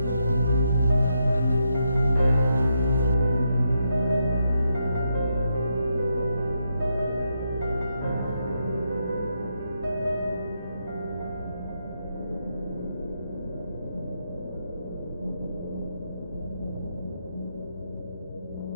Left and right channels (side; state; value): both; inverted; correlation -0.81